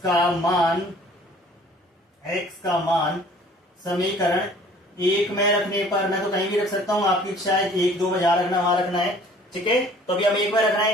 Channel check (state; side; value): normal; both; correlation 0.52